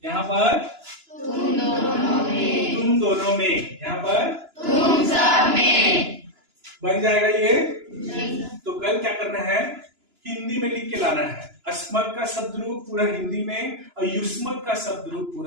यहाँ पर तुम दोनों में। तुम दोनों में, यहाँ पर तुम सब में। बन जाएगा ये। तो कल क्या करना है? हिंदी में लिख के लाना है। अस्मत का शब्द रूप पूरा हिंदी में और युष्मत का शब्द रूप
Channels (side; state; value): left; late; 2.9 ms